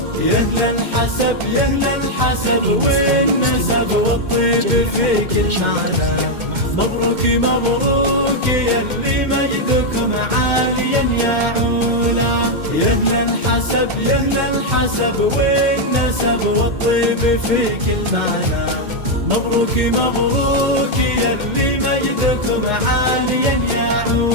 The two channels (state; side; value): late; left; 2.1 ms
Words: يهلا الحسب يهلا الحسب والنسب والطيب في كل معنى. مبروك مبروك يلي مجدكم عاليا يا علا. يهلا الحسب يهلا الحسب والنسب والطيب في كل معنى. مبروك مبروك يلي مجدكم عاليا يا